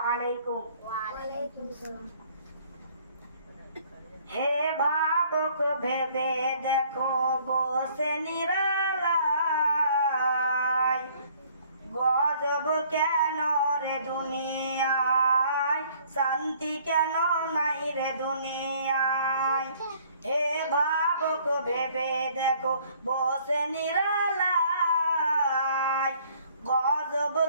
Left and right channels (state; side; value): inverted; both; correlation -0.59